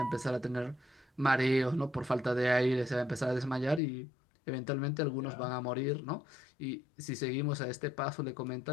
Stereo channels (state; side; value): drops out; right; at 3.8 s